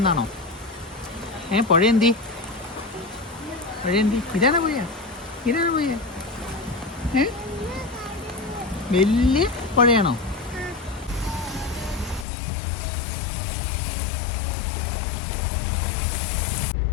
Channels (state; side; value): drops out; right; at 12.2 s